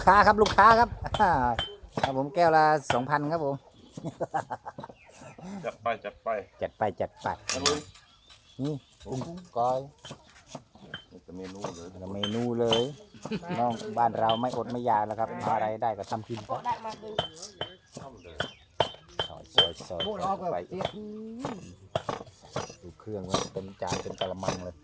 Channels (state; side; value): identical; both; correlation 1.00